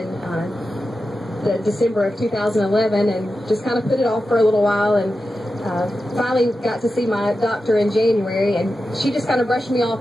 the December of 2011, and just kind of put it off for a little while, and finally got to see my doctor in January, and she just kind of brushed me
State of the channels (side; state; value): both; normal; correlation 0.91